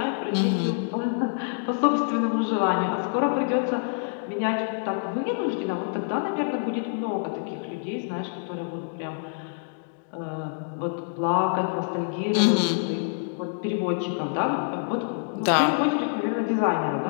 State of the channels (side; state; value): right; silent; digital silence